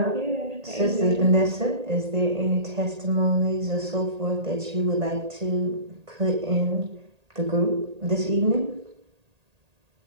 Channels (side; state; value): left; late; 1.8 ms